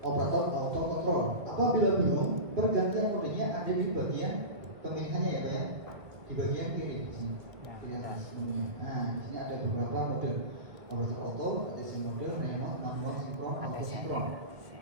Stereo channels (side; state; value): left; late; 2.1 ms